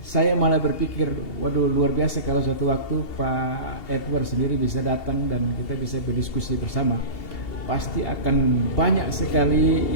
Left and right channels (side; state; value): right; late; 2.8 ms